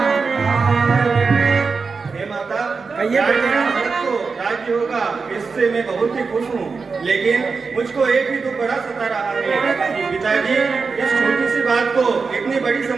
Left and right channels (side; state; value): left; quieter; 4.8 dB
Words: राज्य होगा, इससे मैं बहुत ही खुश हूँ, लेकिन मुझको एक ही दुख बड़ा सता रहा है कि पिताजी इस छोटी सी बात को इतनी बड़ी